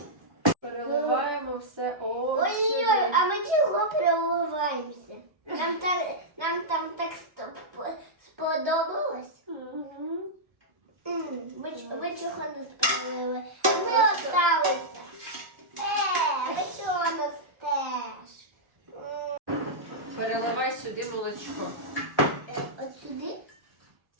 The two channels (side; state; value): left; late; 1.3 ms